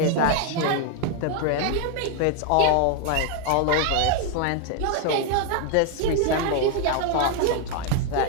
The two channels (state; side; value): different; both; correlation 0.00